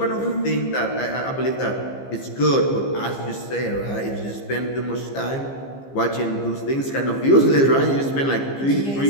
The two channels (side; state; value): right; late; 15 ms